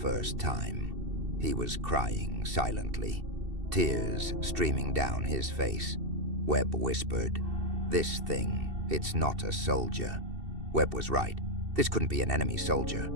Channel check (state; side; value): late; left; 2.7 ms